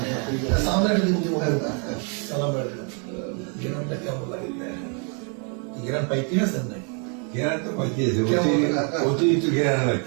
गिरानটা কেমন লাগে गिरान পাইতে আছেন নাকি জ্ঞান তো পাইতেছে অতিরিক্ত জ্ঞান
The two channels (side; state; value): left; quieter; 38.8 dB